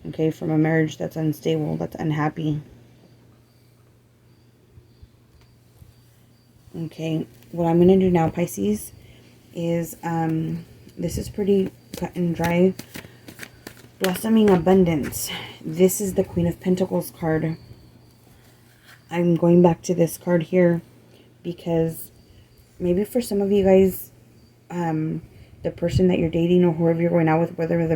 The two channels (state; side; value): identical; both; correlation 1.00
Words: Okay, from a marriage that's unstable, that's unhappy. Okay, what I'm going to do now, Pisces, is, this is pretty cut and dry. Blossoming abundance. This is the Queen of Pentacles card. I'm going back to this card here because maybe for some of you guys, the person that you're dating or whoever you're going out with, whether